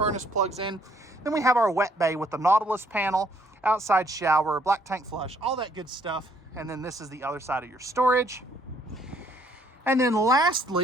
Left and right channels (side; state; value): both; normal; correlation 0.66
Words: plugs in. Then we have our wet bay with the Nautilus panel, outside shower, black tank flush, all that good stuff. And then this is the other side of your storage. And then